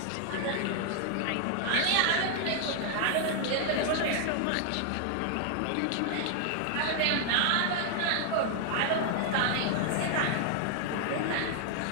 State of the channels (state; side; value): different; both; correlation 0.00